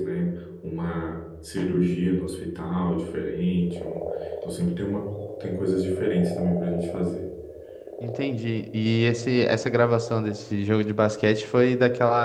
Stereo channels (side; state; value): both; identical; correlation 1.00